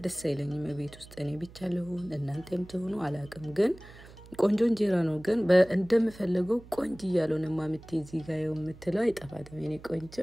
ደስ አይለኝም ቤት ውስጥ እኔ ብቻ ለሆን እናንተም ተሆኑ አላቅም ግን ቆንጆ እንጀራ ነው ግን እንደምፈልገው ቆንጆ ያለውን ማምቴ እዚህ ጋር የምትለው አይጠፋትም እኔ ቆንጆ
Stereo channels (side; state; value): right; noise; hum, 20 dB below the sound